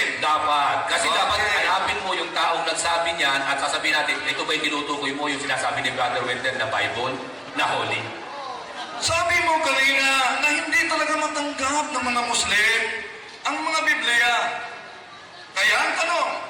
Dapat. Kasi Okay. dapat hanapin mo yung taong nagsabi niyan at sasabihin natin, ito ba yung tinutukoy mo yung sinasabi ni Brother Wendell na Bible, na Holy? Sabi mo kanina na hindi talaga matanggap ng mga Muslim ang mga Biblia. Kaya ang tanong,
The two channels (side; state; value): both; identical; correlation 1.00